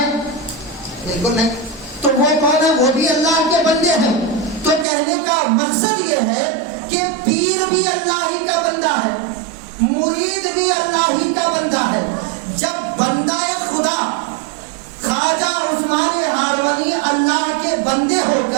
بالکل نہیں. تو وہ کون ہے؟ وہ بھی اللہ کے بندے ہیں. تو کہنے کا مقصد یہ ہے کہ پیر بھی اللہ ہی کا بندہ ہے، مرید بھی اللہ ہی کا بندہ ہے. جب بندہ خدا خواجہ عثمان ہارمنی اللہ کے بندے ہو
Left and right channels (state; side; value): drops out; left; at 4.9 s